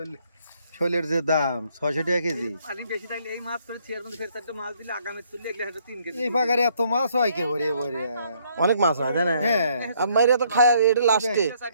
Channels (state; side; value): inverted; both; correlation -0.67